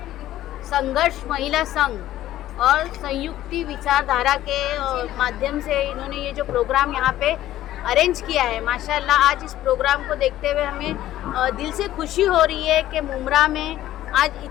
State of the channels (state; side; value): quieter; right; 13.8 dB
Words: संघर्ष महिला संघ और संयुक्ति विचारधारा के माध्यम से इन्होंने ये जो प्रोग्राम यहाँ पे अरेंज किया है, माशाल्लाह आज इस प्रोग्राम को देखते हुए हमें दिल से खुशी हो रही है कि मुंब्रा में आज